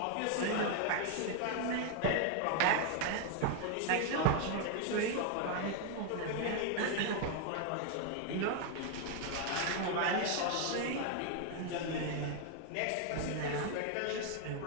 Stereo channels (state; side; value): different; both; correlation 0.00